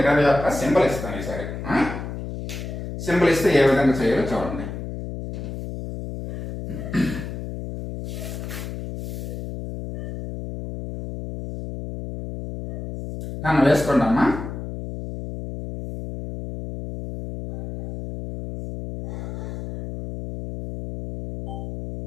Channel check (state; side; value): noise; left; hum, 7 dB below the sound